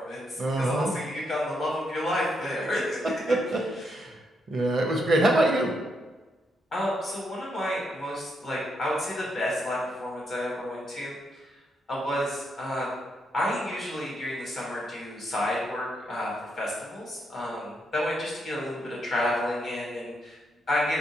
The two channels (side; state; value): both; normal; correlation 0.79